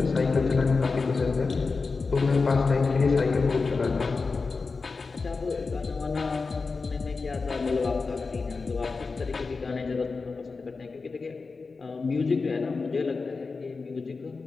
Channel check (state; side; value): quieter; right; 4.3 dB